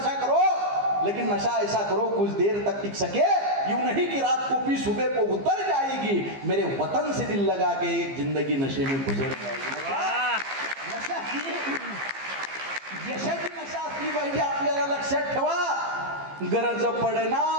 करो, लेकिन नशा ऐसा करो कुछ देर तक टिक सके. यूं नहीं कि रात को पी सुबह को उतर जाएगी, मेरे वतन से दिल लगा के एक जिंदगी नशे में गुजर जाएगी. नशा ही यशाची नशा असली पाहिजे आपल्याला. लक्षात ठेवा. गरज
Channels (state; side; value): late; left; 15 ms